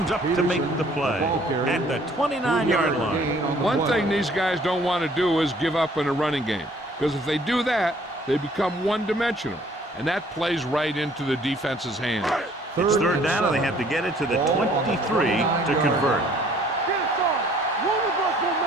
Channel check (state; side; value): normal; both; correlation 0.58